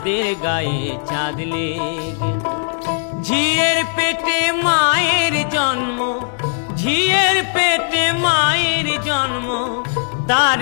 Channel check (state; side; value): silent; right; digital silence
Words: গায়ে চাঁদ লেগেছে। ঝিয়ের পেটে মায়ের জন্ম, ঝিয়ের পেটে মায়ের জন্ম,